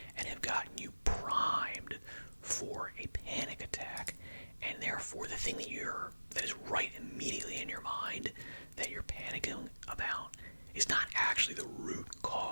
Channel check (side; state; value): both; inverted; correlation -1.00